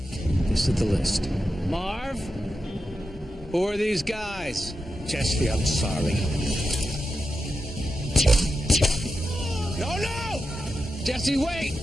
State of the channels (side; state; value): both; normal; correlation 0.89